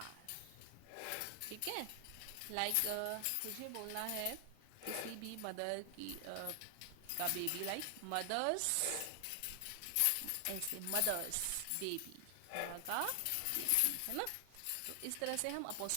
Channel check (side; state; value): both; different; correlation 0.00